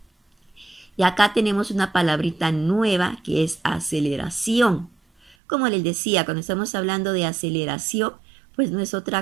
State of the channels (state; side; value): drops out; left; at 5.4 s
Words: Y acá tenemos una palabrita nueva que es aceleración. Como les decía, cuando estamos hablando de aceleración, pues no es